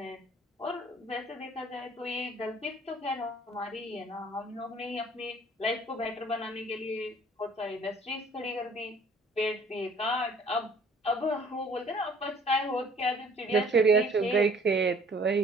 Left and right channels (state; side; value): normal; both; correlation 0.56